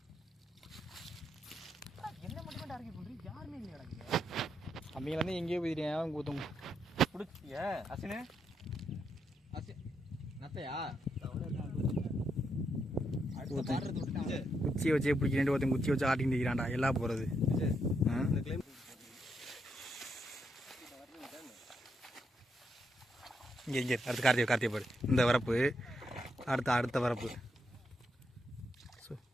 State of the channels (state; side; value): normal; both; correlation 0.80